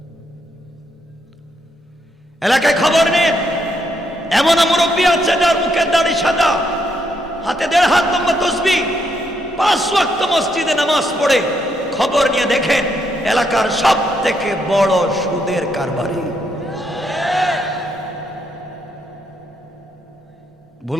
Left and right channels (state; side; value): normal; both; correlation 0.76